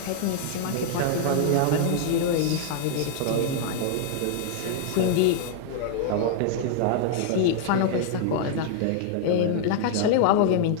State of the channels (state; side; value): different; both; correlation -0.01